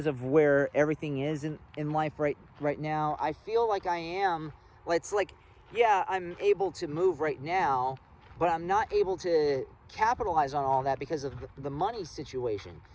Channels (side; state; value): both; identical; correlation 1.00